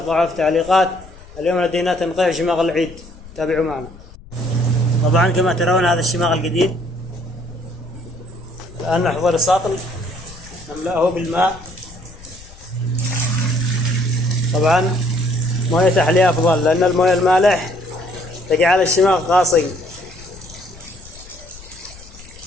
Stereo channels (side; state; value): left; noise; rumble, 19 dB below the sound